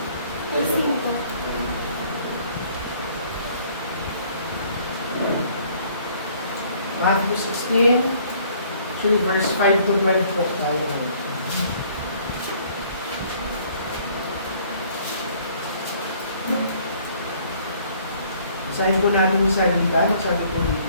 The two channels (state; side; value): inverted; both; correlation -0.59